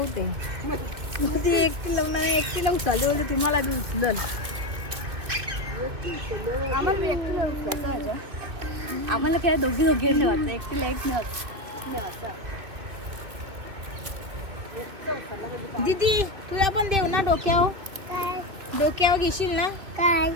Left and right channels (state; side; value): late; left; 2.4 ms